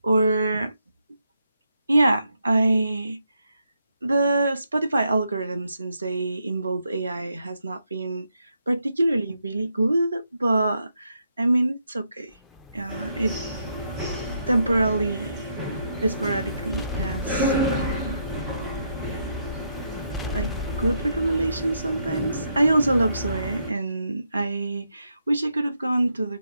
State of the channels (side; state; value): both; inverted; correlation -0.79